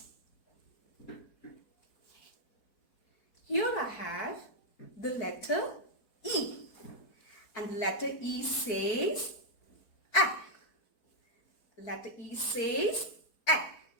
Here I have the letter E, and the letter E says A. Letter E says A.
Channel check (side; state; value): right; late; 4.6 ms